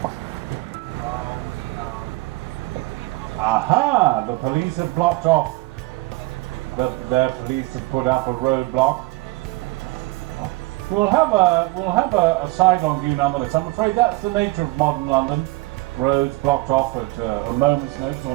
Aha! The police have blocked off. Their police have put up a roadblock. We'll have a side-on view nonetheless. I'm afraid that's the nature of modern London. Roads blocked off at a moment's notice or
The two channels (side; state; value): left; quieter; 22.0 dB